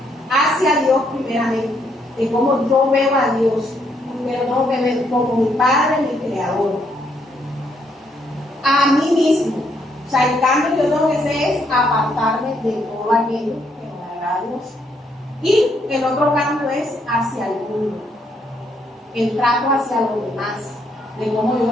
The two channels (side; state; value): both; normal; correlation 0.73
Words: hacia Dios primeramente, de cómo yo veo a Dios, pero no me veo como mi Padre, mi Creador, a mí mismo. O sea, el cambio que yo tengo que hacer es apartarme de todo aquello que no me agrada a Dios. Y el otro cambio es hacia el mundo, el trato hacia los demás, de cómo yo